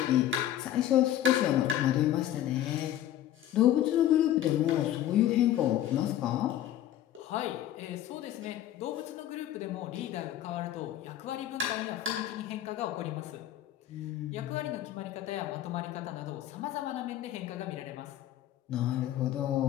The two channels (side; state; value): right; quieter; 12.2 dB